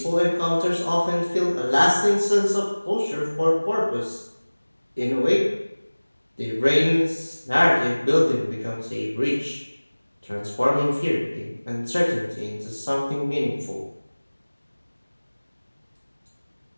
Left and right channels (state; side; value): inverted; both; correlation -1.00